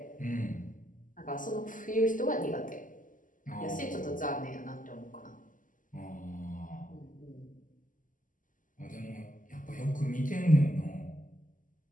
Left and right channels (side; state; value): right; late; 0.38 ms